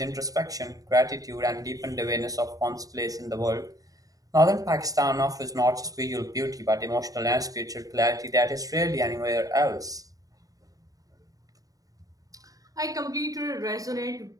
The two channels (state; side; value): late; left; 0.17 ms